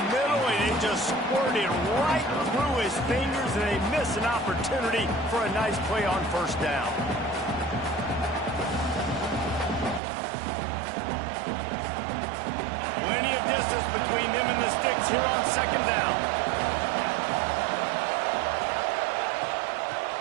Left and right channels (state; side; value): drops out; left; at 10.0 s